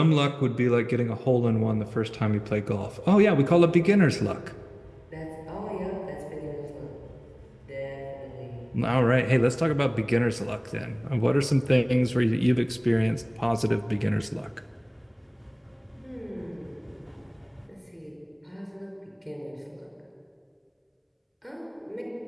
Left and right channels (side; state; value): both; identical; correlation 1.00